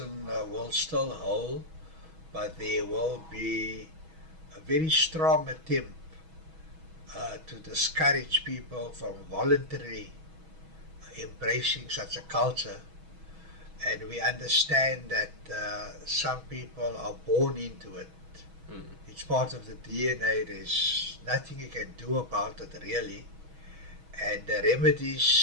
will still hold, but there will be a very strong attempt to discourage people from voluntarily embracing such a culture. And we understand that some people are born into it. It's part of the DNA. There's nothing you can do about it, really. And the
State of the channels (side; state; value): left; late; 6.2 ms